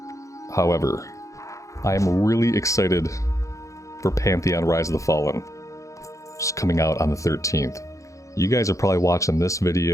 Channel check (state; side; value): late; right; 0.15 ms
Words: however, I am really excited for Pantheon Rise of the Fallen, which is coming out on the 13th. You guys are probably watching this